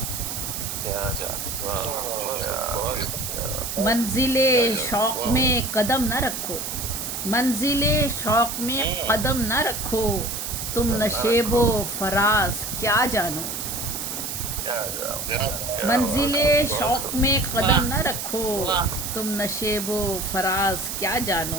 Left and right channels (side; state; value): right; noise; hiss, 5 dB below the sound